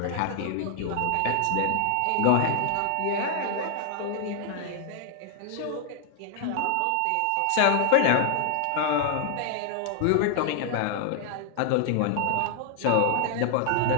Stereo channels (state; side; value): different; both; correlation 0.00